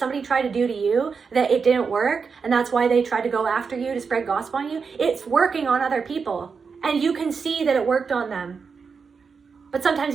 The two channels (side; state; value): left; quieter; 5.5 dB